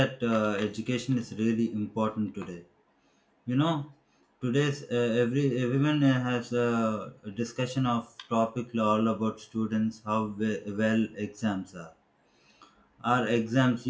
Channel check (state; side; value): identical; both; correlation 1.00